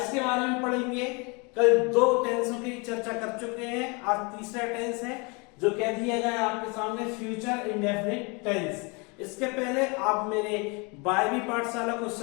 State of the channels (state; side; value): quieter; right; 29.9 dB